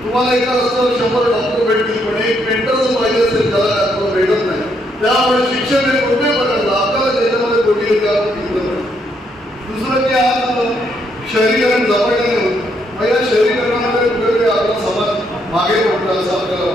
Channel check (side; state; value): both; normal; correlation 0.74